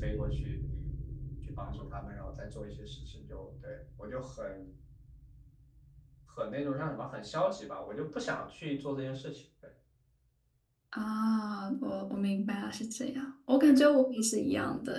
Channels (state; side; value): identical; both; correlation 1.00